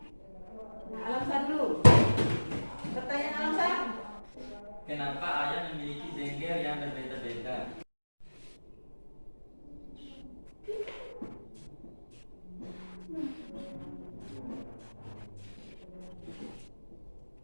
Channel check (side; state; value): both; inverted; correlation -1.00